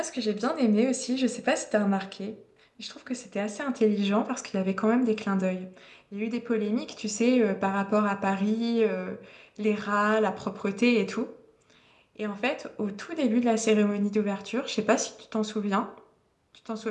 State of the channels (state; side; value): identical; both; correlation 1.00